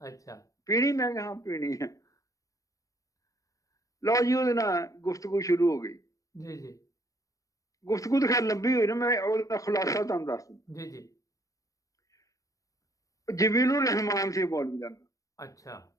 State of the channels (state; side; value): late; right; 0.16 ms